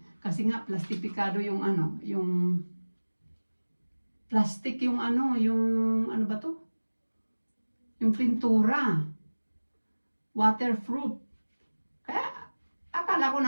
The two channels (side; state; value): both; inverted; correlation -1.00